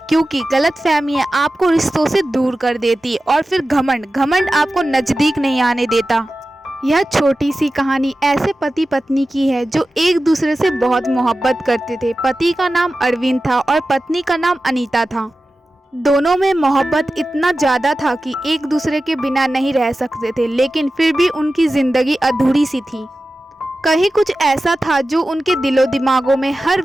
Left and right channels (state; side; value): normal; both; correlation 0.94